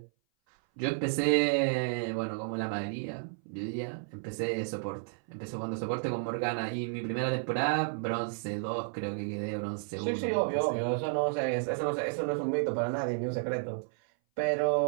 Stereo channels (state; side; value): silent; left; 57 dB below the other